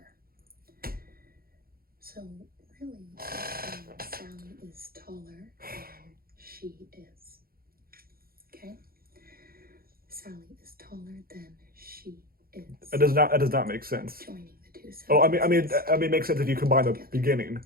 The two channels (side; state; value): left; late; 0.43 ms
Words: So really, Sally is taller than she is. Okay? Sally is taller than she is. That does not make sense. Joining the two sentences. Oh, I mean, it makes sense if you combine the beginning.